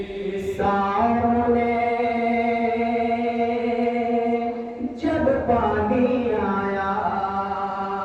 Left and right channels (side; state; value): both; identical; correlation 1.00